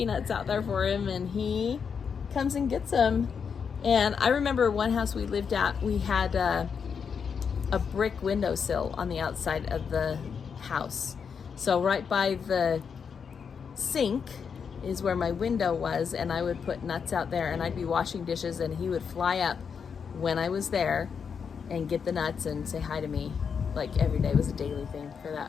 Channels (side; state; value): right; quieter; 6.5 dB